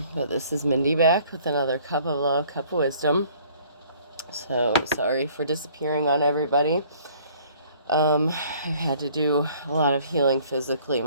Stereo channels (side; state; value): both; inverted; correlation -0.57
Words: this is Mindy back with another cup of love, cup of wisdom. So sorry for disappearing on everybody. I've had to do a lot of healing physically.